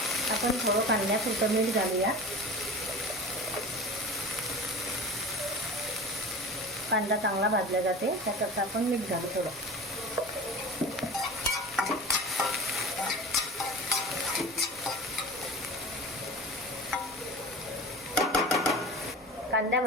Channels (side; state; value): both; normal; correlation 0.35